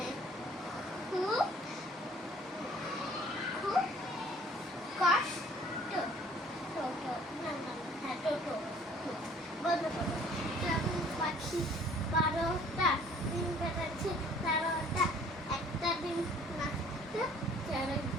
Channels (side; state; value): both; normal; correlation 0.56